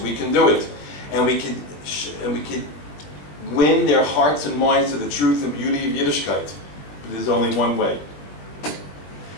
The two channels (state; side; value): late; right; 20 ms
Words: can do it. And we can win their hearts and minds to the truth and beauty of Yiddishkeit. But there's only one way.